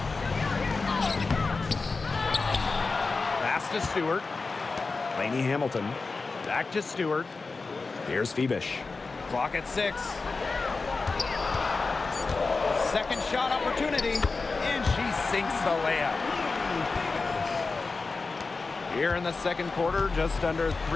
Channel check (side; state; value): right; quieter; 4.0 dB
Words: Pass to Stewart. Lainey Hamilton. Back to Stewart. Here's Phoebish. Clock at 6. Second shot opportunity. And she sinks the layup. Here in the second quarter, just under